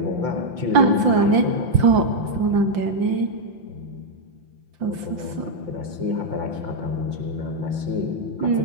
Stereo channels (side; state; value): left; late; 5.8 ms